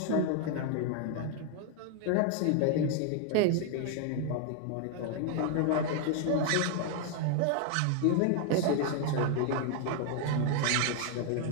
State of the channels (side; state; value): both; different; correlation 0.00